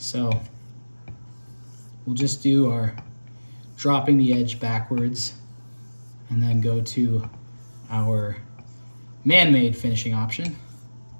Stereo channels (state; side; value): inverted; both; correlation -1.00